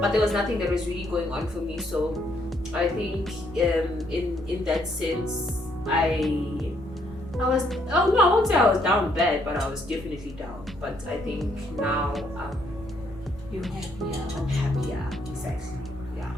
but there was nothing that was really going on for me. So I think in that sense, I was, I won't say I was down bad, but I was definitely down. But I think now You're happier. I'm happier, exactly, yeah.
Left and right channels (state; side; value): noise; left; rumble, 18 dB below the sound